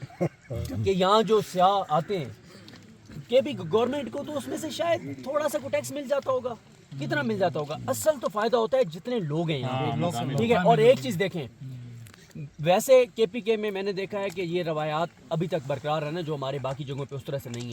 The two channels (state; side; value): identical; both; correlation 1.00